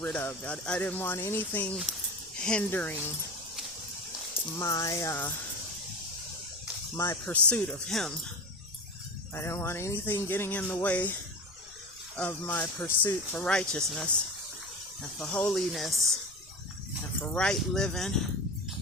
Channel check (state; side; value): noise; left; rumble, 26 dB below the sound